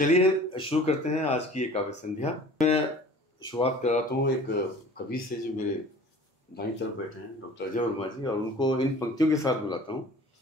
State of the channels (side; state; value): both; normal; correlation 0.45